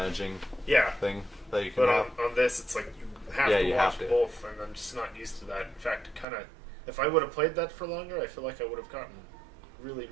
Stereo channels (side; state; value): left; drops out; at 6.2 s